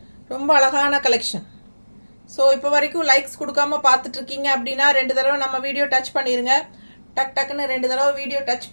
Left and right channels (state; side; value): inverted; both; correlation -1.00